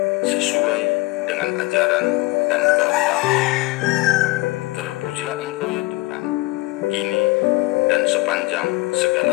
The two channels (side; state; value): right; quieter; 21.7 dB